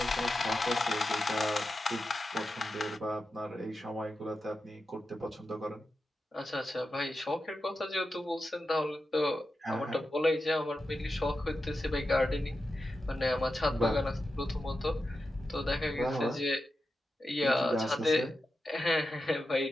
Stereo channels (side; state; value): both; normal; correlation 0.90